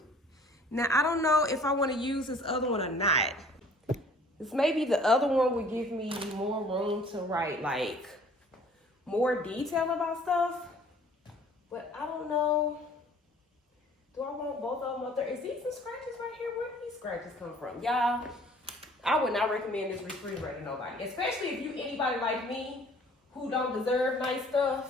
Now, I don't know if I want to use this other one or not. This maybe the other one would give me more room to write like more detail about stuff. But I don't know. Do I want both of them up there? Is these some scratches right here? Where do these scratches come from? Y'all, I would not recommend this refrigerator to nobody. Especially if you anybody like me who don't deserve nice stuff.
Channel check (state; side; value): normal; both; correlation 0.53